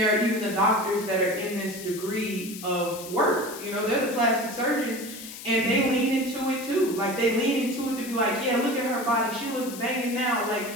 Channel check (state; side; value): noise; left; hiss, 12 dB below the sound